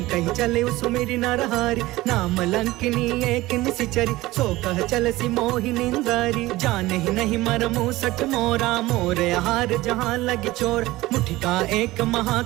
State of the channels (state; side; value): quieter; left; 18.4 dB